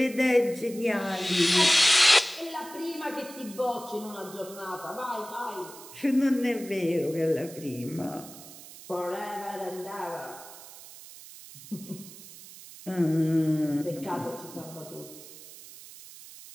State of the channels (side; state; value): right; noise; hiss, 17 dB below the sound